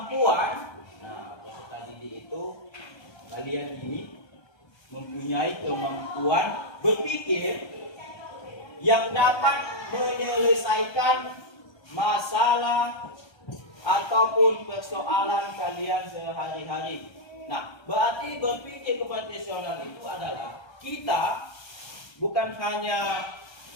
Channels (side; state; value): right; late; 1.3 ms